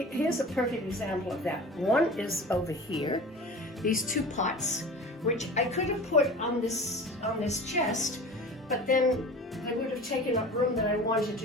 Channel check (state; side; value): normal; both; correlation 0.37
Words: a perfect example of that. One is over here, these two pots, which I could have put on this chest, but then they would have taken up room that I wanted to